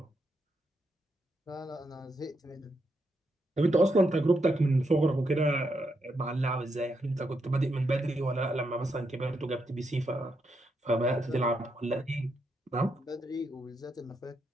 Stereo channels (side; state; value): both; normal; correlation 0.81